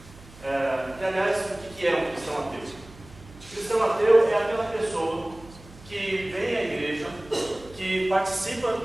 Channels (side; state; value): right; noise; hum, 21 dB below the sound